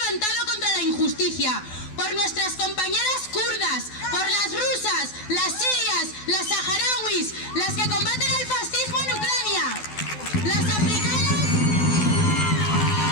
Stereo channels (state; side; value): late; right; 12 ms